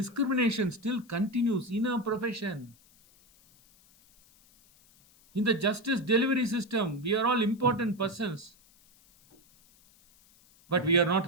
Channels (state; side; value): noise; left; hiss, 29 dB below the sound